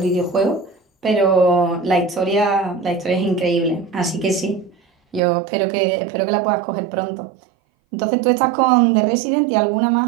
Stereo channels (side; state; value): left; drops out; at 5.2 s